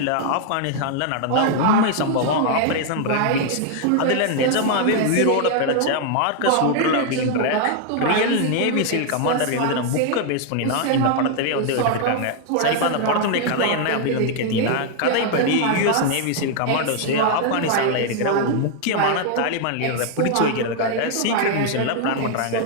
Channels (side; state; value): both; different; correlation 0.00